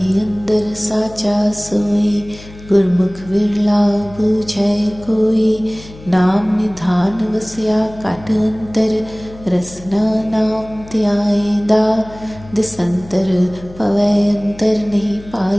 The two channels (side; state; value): left; noise; hum, 18 dB below the sound